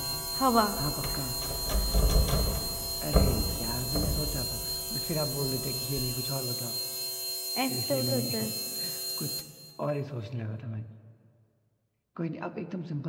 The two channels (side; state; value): both; identical; correlation 1.00